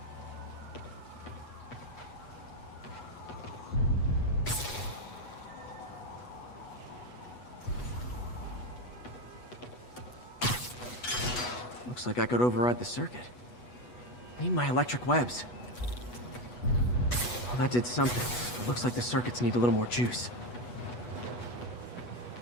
Looks like I could override the circuit. Need my electric webs. Well, that did something. It looks like the circuits need a little more juice.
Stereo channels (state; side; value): late; right; 8.2 ms